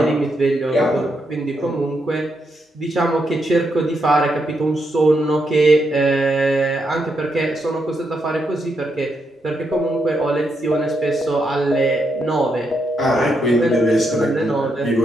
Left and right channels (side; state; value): both; normal; correlation 0.80